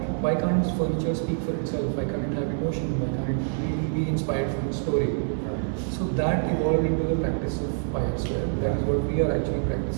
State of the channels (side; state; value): left; silent; digital silence